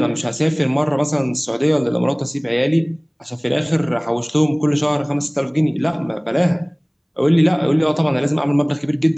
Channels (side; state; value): both; identical; correlation 1.00